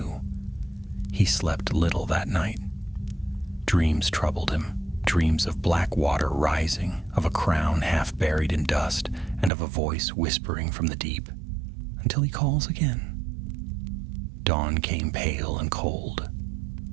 He slept little that night. Dreams troubled him, dreams of black water rising, of a crown half buried in dust, and of a voice whispering from the deep, until he calls again. Dawn came pale and cold.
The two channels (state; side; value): drops out; left; at 9.5 s